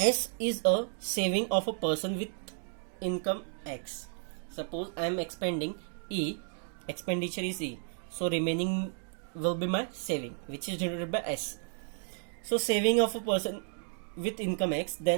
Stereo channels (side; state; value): left; silent; 56 dB below the other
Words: is a saving of a person with income X, suppose I am expending E, expenditure is E, so remaining will be my saving, which is denoted by S. So saving of a person with income X,